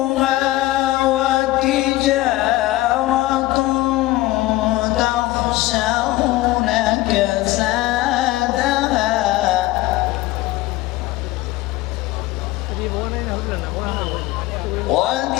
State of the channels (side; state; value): right; quieter; 17.3 dB